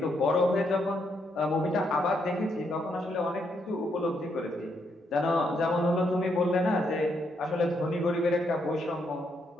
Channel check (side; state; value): both; normal; correlation 0.76